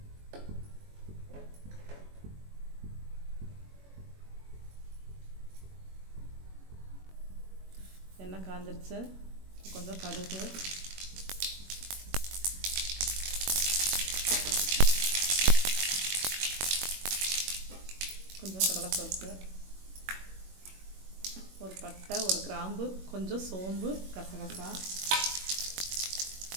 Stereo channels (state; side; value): late; left; 21 ms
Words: எண்ணெய் காஞ்சிருச்சு. கொஞ்சம் கடுகு, கொஞ்சம் கடலைப்பருப்பு, ஒரு பட்டை, ஒரு கிராம்பு, கொஞ்சம் சோம்பு, கசகசா,